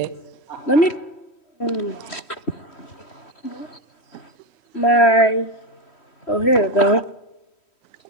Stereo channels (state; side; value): late; right; 3.1 ms